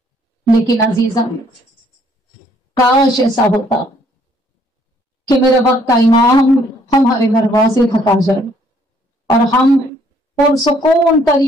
لیکن عزیزم کاش ایسا ہوتا کہ میرے وقت کا امام ہمارے دروازے تک آ جائے اور ہم پرسکون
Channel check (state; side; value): normal; both; correlation 0.64